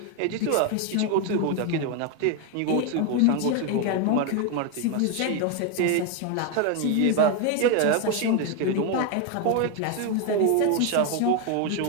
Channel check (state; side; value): different; both; correlation 0.01